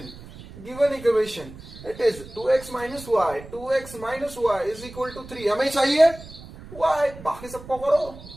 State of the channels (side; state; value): right; noise; rumble, 16 dB below the sound